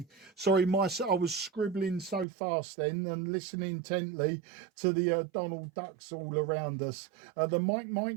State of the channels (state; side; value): drops out; left; at 2.2 s